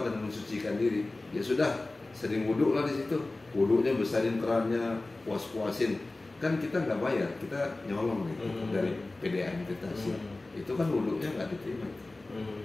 dan mensucikan diri. Ya sudah, sering wuduklah di situ. Wuduknya besarin kerannya, puas-puasin. Kan kita nggak bayar, kita nyolong gitu dari PDAM kita sih. Itu kan wuduknya nggak diterima,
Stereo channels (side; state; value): right; quieter; 3.0 dB